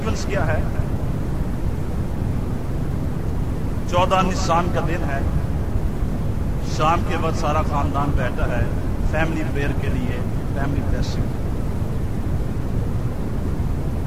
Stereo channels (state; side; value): identical; both; correlation 1.00